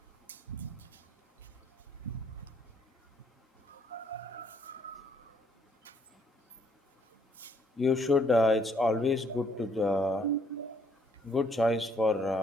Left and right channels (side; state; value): both; normal; correlation 0.66